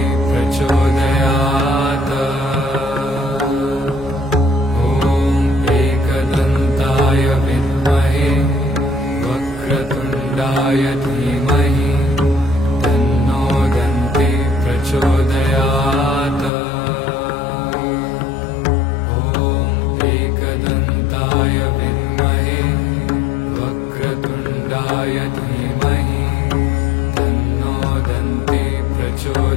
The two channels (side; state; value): right; drops out; at 16.5 s